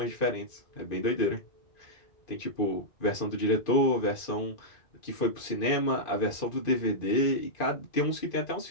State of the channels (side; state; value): right; late; 2.5 ms